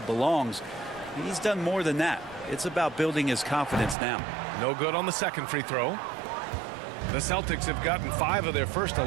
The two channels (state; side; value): drops out; left; at 4.0 s